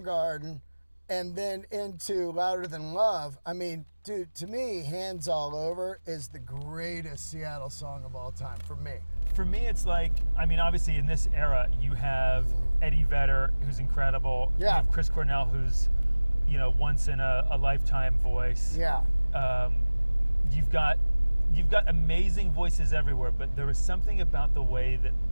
and then into Louder Than Love, I mean, dude, to me, Hands All Over is the greatest Seattle song of all time for me. For me, it's like, I mean, obviously in this era, you have Eddie Vedder, who's incredible. Yeah. You have Chris Cornell, who's, you know, once in a lifetime voice. Yeah. You've got amazing voices everywhere, but there was something about the way that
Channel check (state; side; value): inverted; both; correlation -1.00